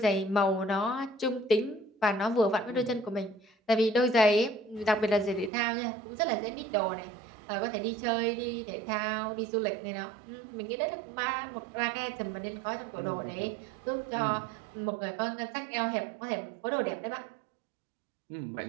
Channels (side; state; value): left; drops out; at 5.5 s